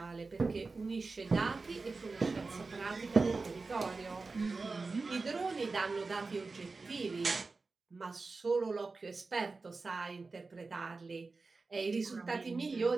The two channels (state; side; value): quieter; left; 3.9 dB